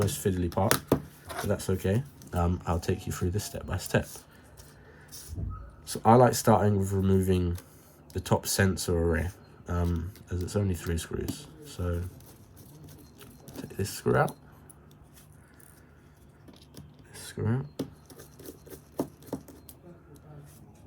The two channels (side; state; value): both; identical; correlation 1.00